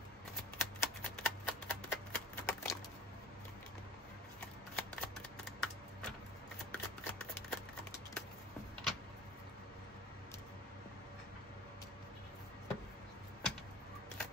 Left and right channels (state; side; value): normal; both; correlation 0.38